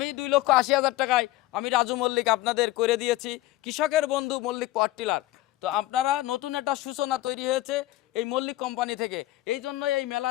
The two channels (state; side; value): quieter; right; 16.7 dB